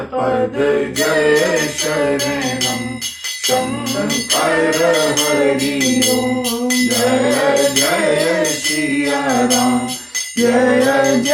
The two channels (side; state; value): both; identical; correlation 1.00